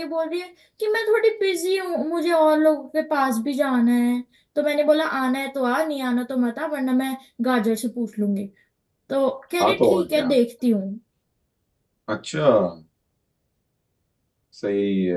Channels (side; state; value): both; identical; correlation 1.00